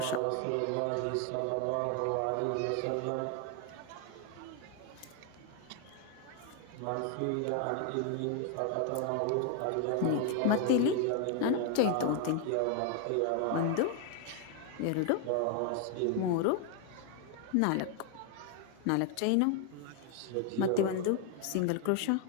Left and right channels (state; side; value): different; both; correlation 0.01